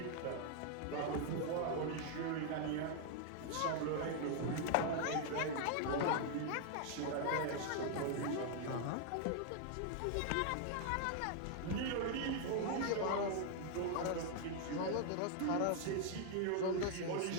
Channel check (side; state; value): both; different; correlation 0.00